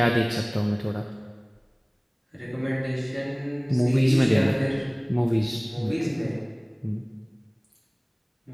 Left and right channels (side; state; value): both; identical; correlation 1.00